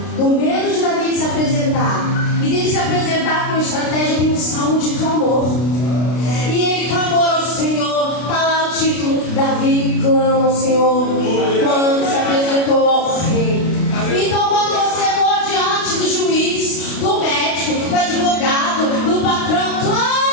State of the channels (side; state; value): right; late; 32 ms